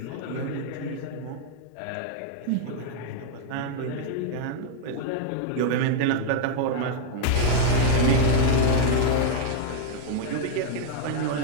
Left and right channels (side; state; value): both; different; correlation -0.01